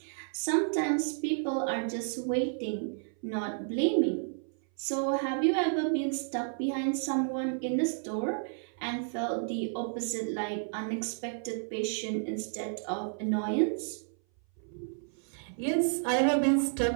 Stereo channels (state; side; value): silent; left; 57 dB below the other